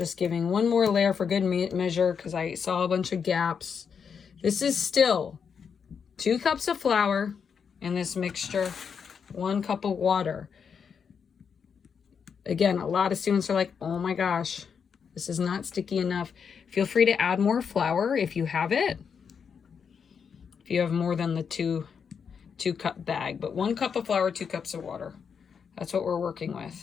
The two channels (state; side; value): quieter; right; 6.6 dB